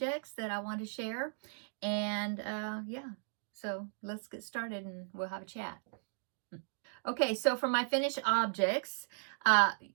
that I want to share. Yeah, so let's get started and we'll have a chat. Okay, so for my finished objects,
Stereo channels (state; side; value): silent; left; digital silence